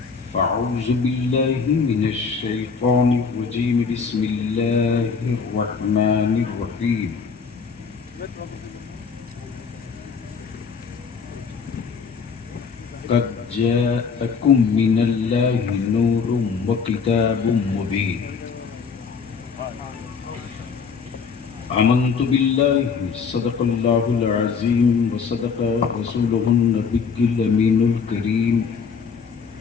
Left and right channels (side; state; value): right; quieter; 5.7 dB